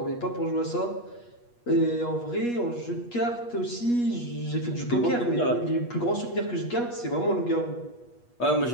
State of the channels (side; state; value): right; late; 8.3 ms